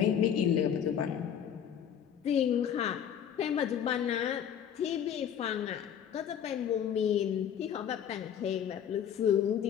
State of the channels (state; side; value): quieter; right; 8.9 dB